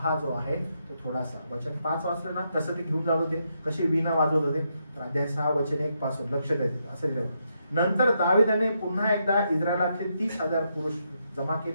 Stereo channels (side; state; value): both; inverted; correlation -0.80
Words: जो आहे तो थोडासा, वचन 5 वाचलं ना तसं ते घेऊन जात होते, कशी वीणा वाजवत होते. तर अध्याय 6 वचन 1 पासून लक्ष द्यायचं असं लिहिलं. नंतर दाविदाने पुन्हा एकदा इस्रायलातले 30,000 पुरुष जमा